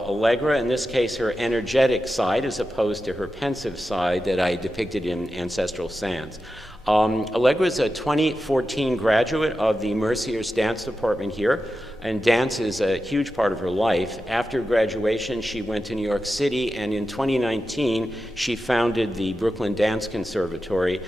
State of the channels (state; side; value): normal; both; correlation 0.91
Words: Allegra, in this case her energetic side as opposed to her pensive side that I depicted in Ancestral Sands. Allegra is a 2014 graduate of the Mercyhurst dance department here, and dance is a huge part of her life. After graduation, she went to New York City, and in 2019, she founded the Brooklyn Dance Conservatory